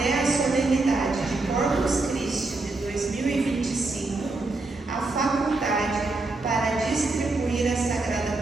a solenidade de Corpus Christi de 2025, a faculdade para distribuir a Sagrada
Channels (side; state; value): left; quieter; 3.3 dB